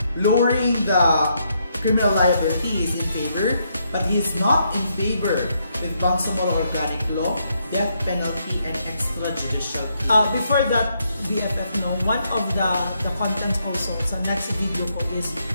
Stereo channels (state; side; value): inverted; both; correlation -0.76